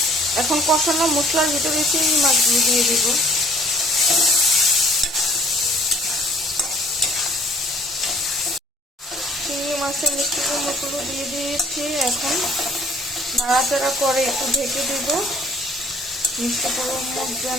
এখন কষানো মশলার ভিতরে চিংড়ি মাছগুলো দিয়ে দিব। চিংড়ি মাছের মিষ্টি কুমড়োগুলো দিয়ে দিয়েছি। এখন নাড়াচাড়া করে একটু ঢেকে দিব, মিষ্টি কুমড়ো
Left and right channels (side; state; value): both; normal; correlation 0.58